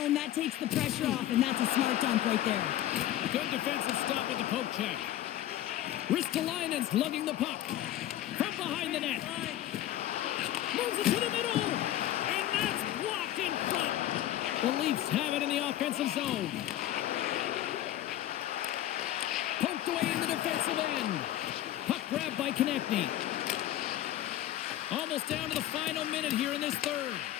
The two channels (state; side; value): quieter; right; 13.1 dB